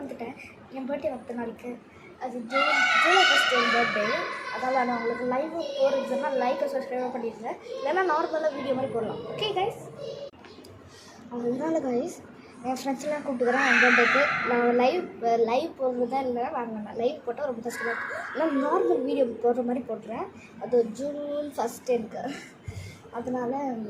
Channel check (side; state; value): both; identical; correlation 1.00